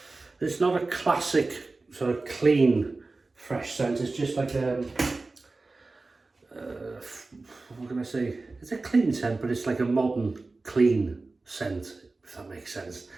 not a classic sort of clean fresh scent. It's just like what can I say? It's a clean scent, but it's like a modern clean scent, if that makes sense.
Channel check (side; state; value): left; quieter; 3.5 dB